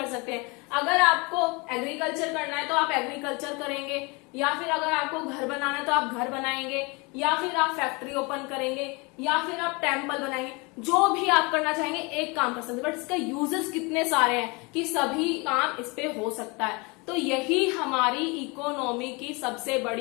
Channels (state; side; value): quieter; right; 28.1 dB